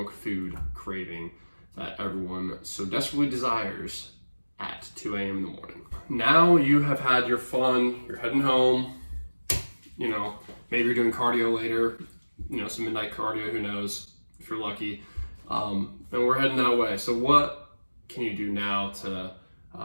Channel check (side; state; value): both; inverted; correlation -1.00